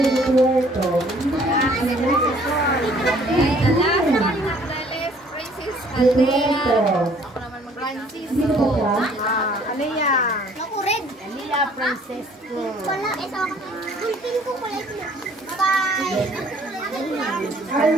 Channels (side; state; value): both; normal; correlation 0.58